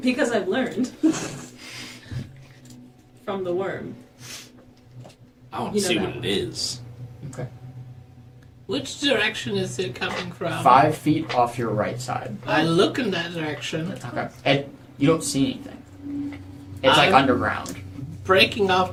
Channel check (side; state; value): both; identical; correlation 1.00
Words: because I've learned from the worm. I want You to know see that. what it is. Which direction is it coming from? 5 feet off your right side. I look in that direction. Okay. And you don't see anything. It's like I'm- underground. Breaking off